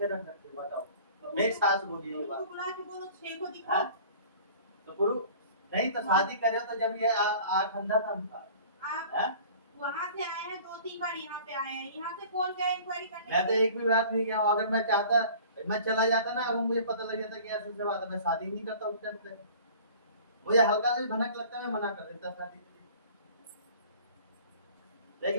रखते हो, बताओ। मेरी सास बोली ये बात। बुला के बोलो 6 को दिखाओ। तो पुरु नहीं तो शादी करे तो जब ये आँख अंधा था उनका। आप वहाँ से आए हैं 2-3 बार, यहाँ पे आए हैं, यहाँ से कौन गया इंक्वायरी करने? मैं तो एक भी बात नहीं किया। अगर मैं चाहता मैं चला जाता ना, वो मुझे पता लग जाता कि ऐसे से बात है, मैं शादी नहीं करता उस टाइम पे। मुझे हल्का सा भी भनक लगता मैं मना कर देता शादी के लिए।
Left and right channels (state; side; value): inverted; both; correlation -0.46